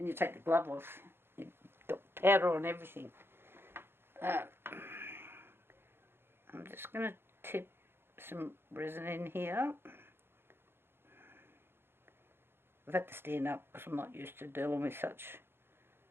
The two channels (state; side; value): late; left; 0.11 ms